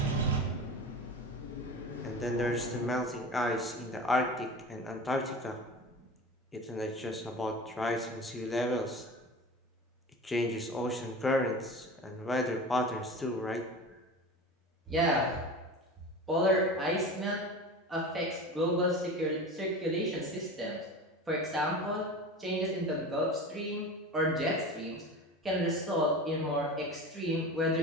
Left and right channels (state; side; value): normal; both; correlation 0.32